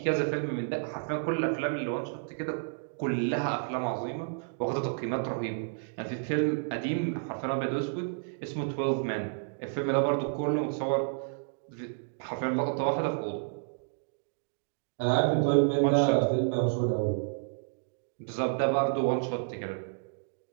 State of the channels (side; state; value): left; silent; digital silence